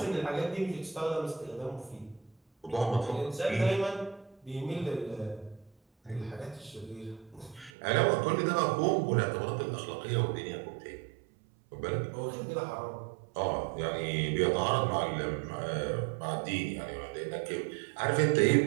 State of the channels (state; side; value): drops out; left; at 7.7 s